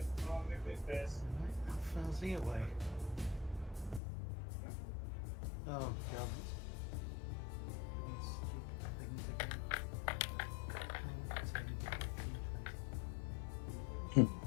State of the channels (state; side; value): drops out; right; at 4.0 s